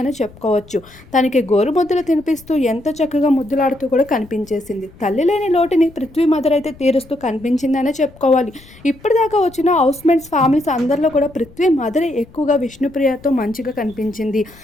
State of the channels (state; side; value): noise; left; rumble, 23 dB below the sound